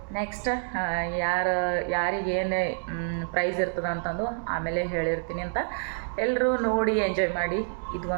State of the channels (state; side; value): silent; left; digital silence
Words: ನೆಕ್ಸ್ಟ್ ಯಾರಿಗೇನು ಪ್ರೈಸ್ ಇರ್ತದೆ ಅಂತಂದು ಆಮೇಲೆ ಹೇಳಿರ್ತೀನಿ ಅಂತ. ಎಲ್ಲರೂ ನೋಡಿ ಎಂಜಾಯ್ ಮಾಡಿ. ಇದು